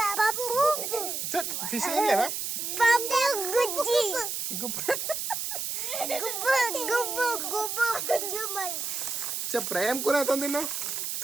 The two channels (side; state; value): right; noise; hiss, 3 dB below the sound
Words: ఫిష్ తినలేవా? చెప్పరా ఏం కూర తిన్నావు?